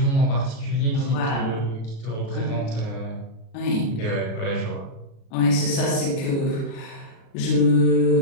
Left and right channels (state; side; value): late; right; 36 ms